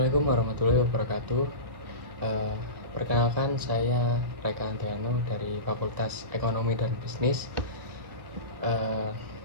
warahmatullahi wabarakatuh. Eh, Perkenalkan, saya Reka Andriano dari Fakultas Ekonomi dan Bisnis, eh,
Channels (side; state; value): left; late; 1.3 ms